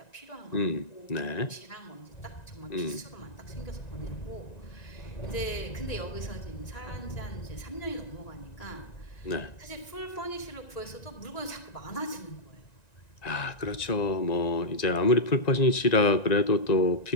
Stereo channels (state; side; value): late; right; 1.9 ms